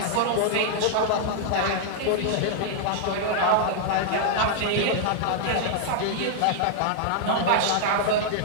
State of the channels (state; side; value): different; both; correlation -0.01